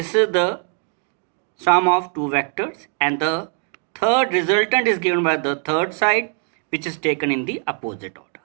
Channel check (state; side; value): quieter; left; 39.8 dB